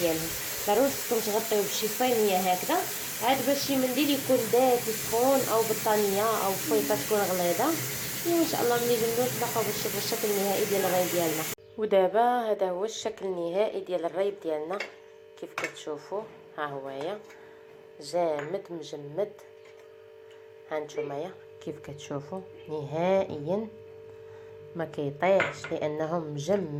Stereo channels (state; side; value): identical; both; correlation 1.00